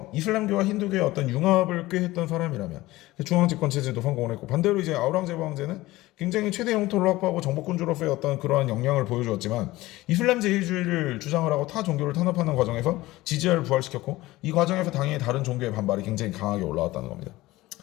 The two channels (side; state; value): right; quieter; 18.3 dB